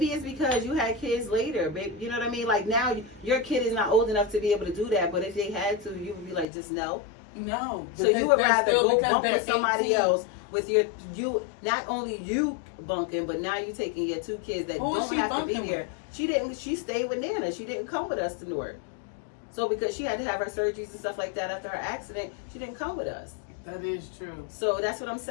it's because you had kids later. Babe, you know what I mean? Like now, your kid is not old enough to be able to do that. But if they had to, you would be like, just no. No. So you would rather go because bunk they're with somebody 18. else with you. Not only you bunking, but now you taking your two kids that Who is don't she have to be bunking here. with? She didn't. She stayed with Nana. She didn't come with us to Newark. So because she had to have her surgeries and stuff like that after her accident, she didn't come with us. That is true. So that's what I'm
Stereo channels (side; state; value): right; drops out; at 6.5 s